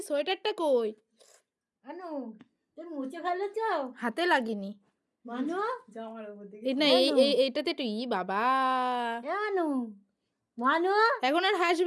সোয়েটারটা কই? আনু তুমি মুছে ফেলেছ? হাতে লাগিনি মানু জামার উপর দিকে, এই না এইটাতে একটু বাবা। আনু মানু এখন আর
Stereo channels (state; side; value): identical; both; correlation 1.00